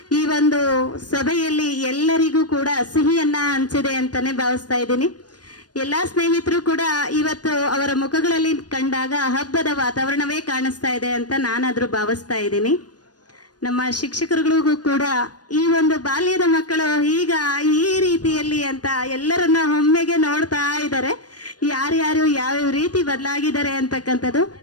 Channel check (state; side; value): late; right; 0.69 ms